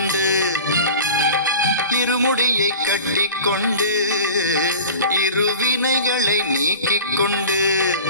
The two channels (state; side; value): inverted; both; correlation -0.38